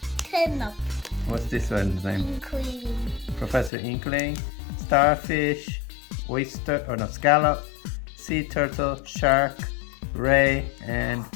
Turn up. What's this one's name? Inkling. Professor Inkling, Starfish, Oyster, or no, Scallop, Sea Turtle, Shark, Ray, and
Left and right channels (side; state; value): right; drops out; at 3.7 s